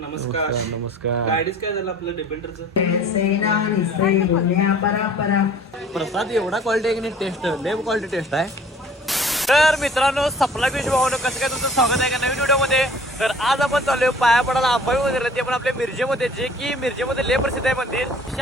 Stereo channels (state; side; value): normal; both; correlation 0.50